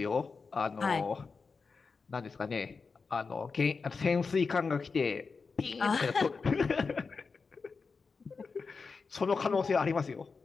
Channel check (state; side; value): quieter; right; 4.8 dB